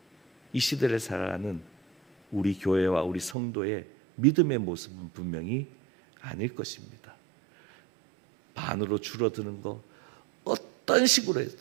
우리 교회와 우리 성도의 믿음의 모습은 분명히 아닐 것입니다. 반으로 줄어드는 거 어떤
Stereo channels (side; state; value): left; drops out; at 3.4 s